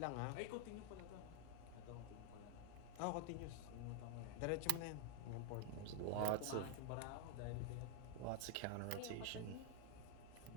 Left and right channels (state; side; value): different; both; correlation 0.00